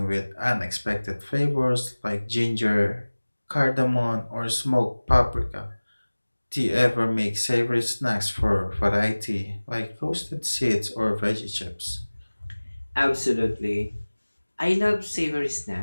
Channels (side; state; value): both; inverted; correlation -1.00